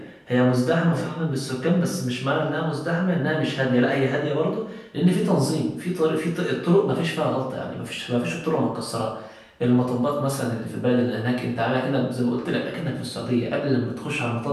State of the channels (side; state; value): both; identical; correlation 1.00